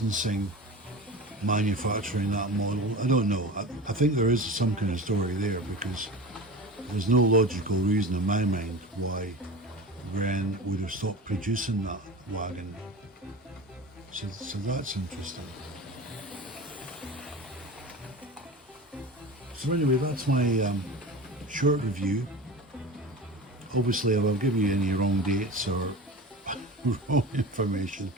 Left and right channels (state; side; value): normal; both; correlation 0.31